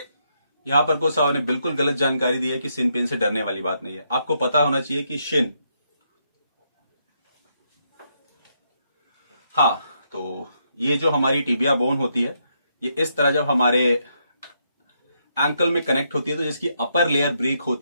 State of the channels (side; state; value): both; inverted; correlation -0.77